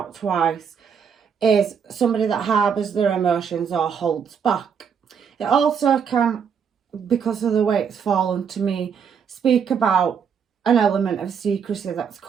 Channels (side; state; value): left; quieter; 7.0 dB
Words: twice, is somebody that harbours their emotions or holds back. It also can, because of the way it's fallen to me, speak about an element of secrecy that's